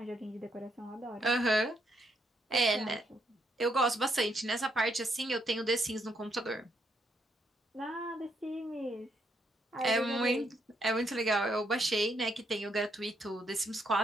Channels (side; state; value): both; normal; correlation 0.75